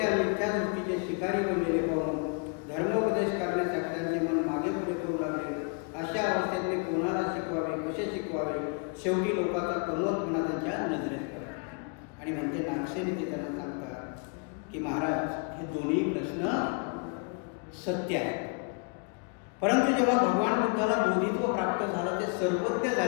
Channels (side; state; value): right; quieter; 35.8 dB